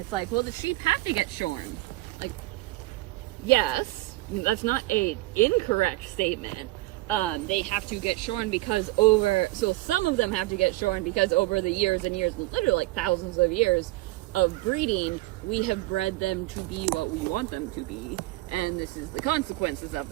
like, well, the sheep have to get shorn. Like, yes, that's not a incorrect statement. They have to get shorn because so some of them have to get shorn because over the years and years, literally like thousands of years of breeding, we have bred them to be what we want them to be, and this is the consequences of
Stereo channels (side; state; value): left; quieter; 19.6 dB